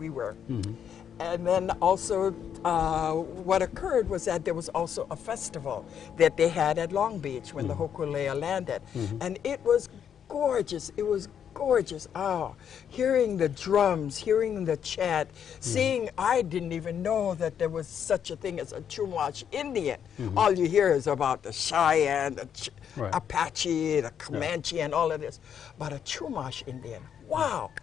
were. And then also what occurred was that there was also a festival that they had at Long Beach when the hokulea landed. And it was gorgeous. It was gorgeous. Oh, hearing the drums, hearing the chant, seeing, I didn't even know that there was such a thing as a Chumash Indian. All you hear is about the Cheyenne, the Right. Apache, the Comanche, and all of this. But a Chumash Indian, wow,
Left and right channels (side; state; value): right; quieter; 8.5 dB